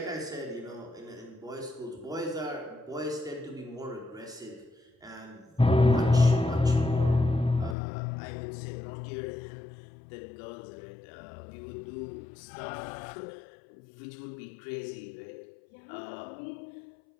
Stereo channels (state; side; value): drops out; right; at 7.8 s